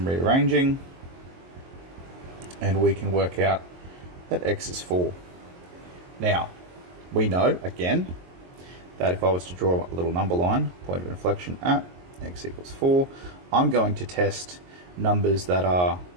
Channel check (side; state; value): left; late; 22 ms